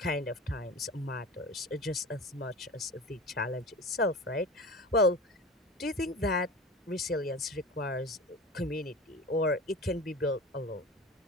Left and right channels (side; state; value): both; normal; correlation 0.33